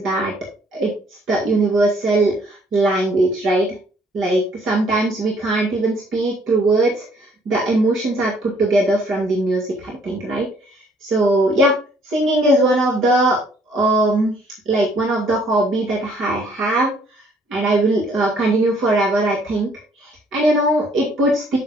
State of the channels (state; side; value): normal; both; correlation 0.63